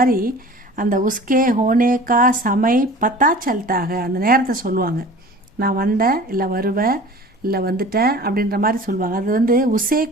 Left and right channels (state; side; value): normal; both; correlation 0.42